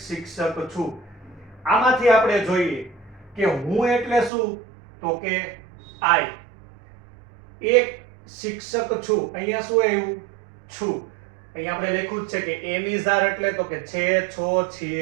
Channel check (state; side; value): drops out; left; at 4.3 s